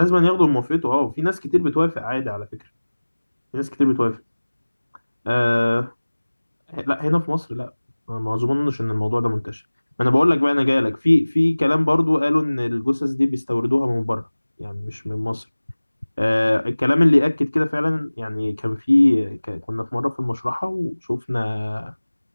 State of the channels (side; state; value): both; inverted; correlation -1.00